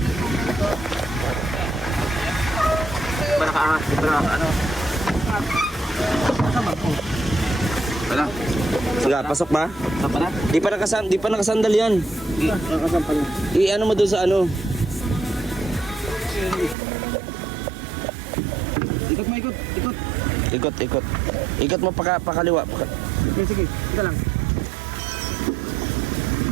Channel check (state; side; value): drops out; left; at 16.8 s